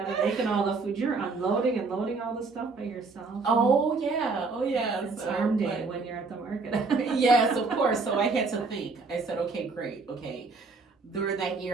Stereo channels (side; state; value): left; quieter; 4.1 dB